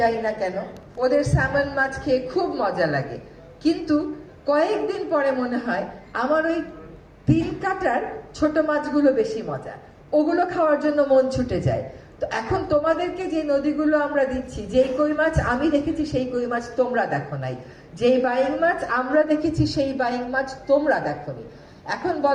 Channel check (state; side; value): identical; both; correlation 1.00